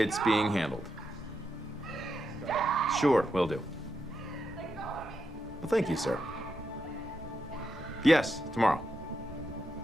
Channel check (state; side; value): normal; both; correlation 0.84